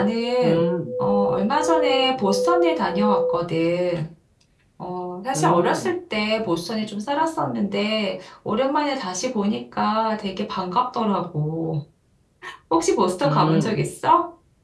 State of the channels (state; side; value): identical; both; correlation 1.00